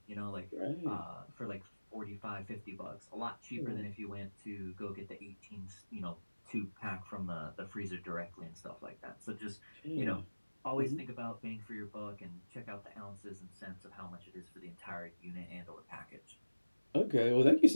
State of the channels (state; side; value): inverted; both; correlation -1.00